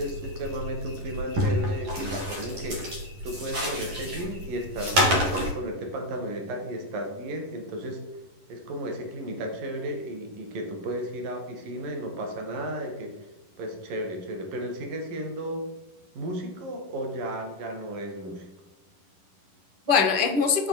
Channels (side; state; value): left; late; 11 ms